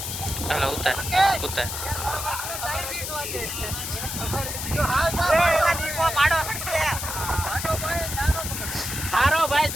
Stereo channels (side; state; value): left; noise; hiss, 5 dB below the sound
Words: હાલો ઉતાર ઉતાર. હારો ભાઈ